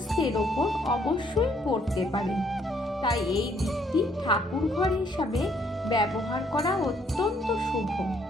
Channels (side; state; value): both; normal; correlation 0.67